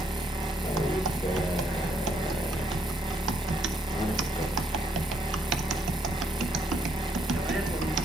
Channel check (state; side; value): normal; both; correlation 0.71